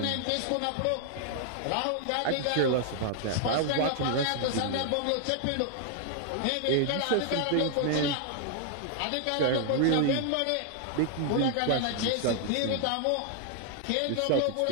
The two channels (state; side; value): different; both; correlation 0.00